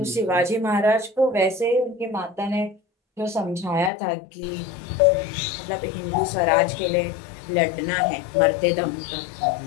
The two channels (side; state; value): right; drops out; at 3.9 s